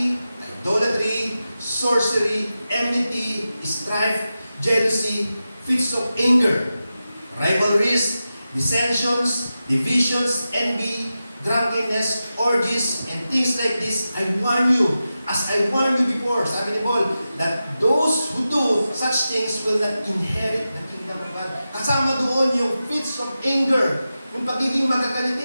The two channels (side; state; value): both; inverted; correlation -0.92